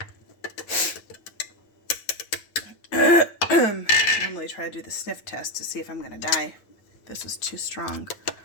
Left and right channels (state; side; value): late; right; 9.4 ms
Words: Normally try to do the sniff test to see if I'm going to die. This is too strong.